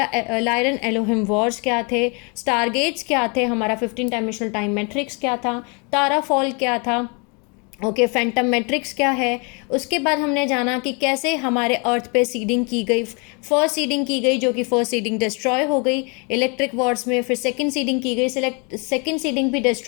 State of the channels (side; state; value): right; quieter; 32.8 dB